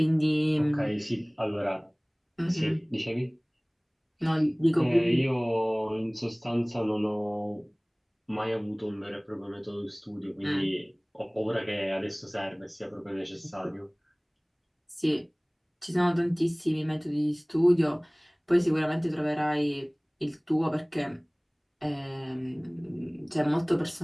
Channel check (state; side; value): identical; both; correlation 1.00